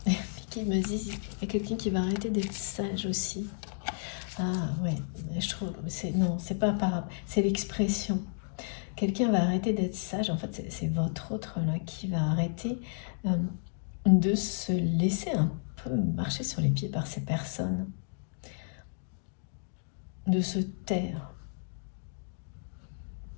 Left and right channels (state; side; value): silent; right; digital silence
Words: Qui me dit, il y a quelqu'un qui va arrêter d'être sage aussi. Ah ouais, je trouve, non, c'est pas par, c'est l'expression. Quelqu'un va arrêter d'être sage. En fait, c'est votre autre là qui va arrêter de se laisser un peu marcher sur les pieds par ces personnes, de se taire.